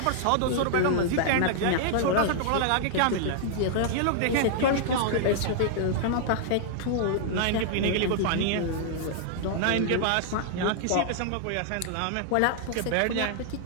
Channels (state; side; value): different; both; correlation -0.01